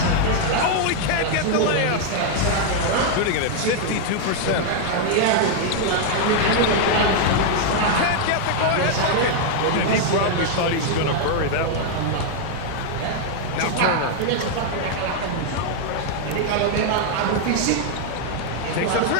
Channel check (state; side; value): different; both; correlation 0.00